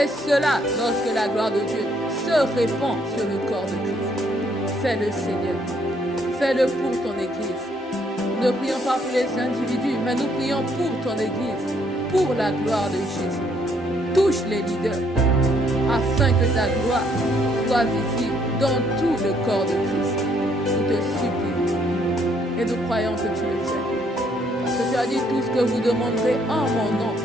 cela lorsque la gloire de Dieu se répand sur le corps de Christ. Fais-le, Seigneur. Fais-le pour ton église. Nous ne prions pas pour les individus, mais nous prions pour ton église, pour la gloire de Jésus. Touche les leaders, afin que ta gloire soit visible dans tout le corps de Christ. Nous te supplions et nous croyons que tu le fais. Parce que tu as dit tout ce que vous demanderez en mon nom.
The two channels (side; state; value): both; normal; correlation 0.69